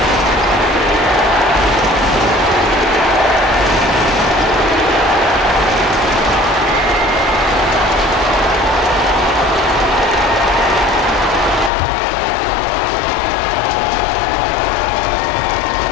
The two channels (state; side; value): drops out; right; at 11.7 s